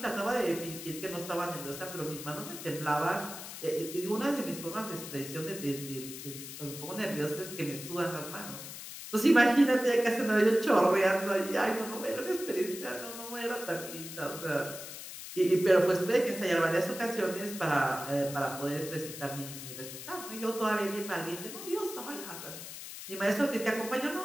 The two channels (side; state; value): left; noise; hiss, 10 dB below the sound